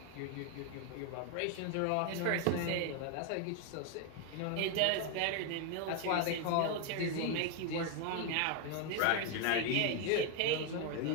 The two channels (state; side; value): different; both; correlation 0.01